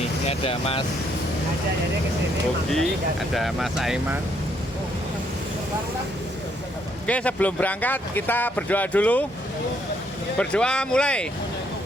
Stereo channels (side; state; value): both; normal; correlation 0.71